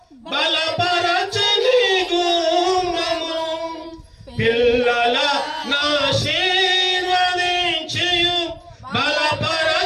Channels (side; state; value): both; identical; correlation 1.00